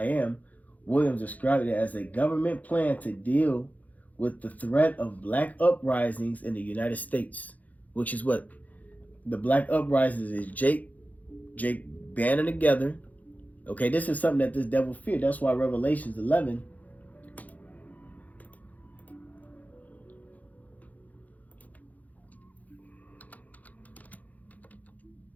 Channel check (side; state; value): right; late; 0.078 ms